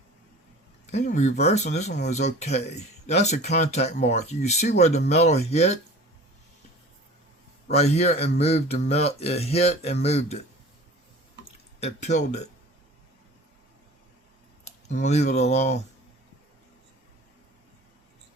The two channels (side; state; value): both; normal; correlation 0.41